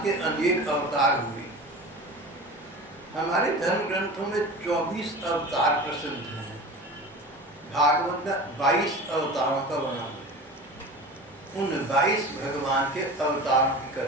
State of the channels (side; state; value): both; normal; correlation 0.34